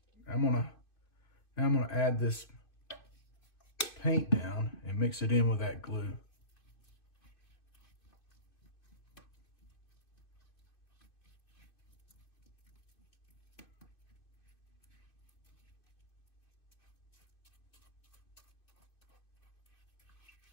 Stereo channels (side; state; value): right; late; 2.5 ms